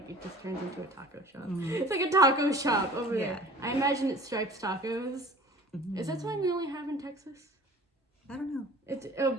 it just turns into a taco shop. It's like a taco shop over there. I imagine it's Stripes Tacos. Is that something we only have in Texas? I don't know. It's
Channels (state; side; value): normal; both; correlation 0.45